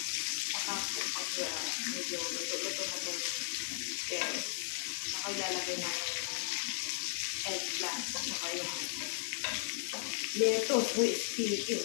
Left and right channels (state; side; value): silent; right; digital silence